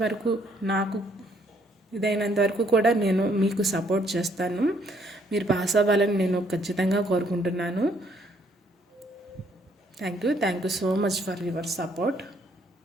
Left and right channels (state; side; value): normal; both; correlation 0.67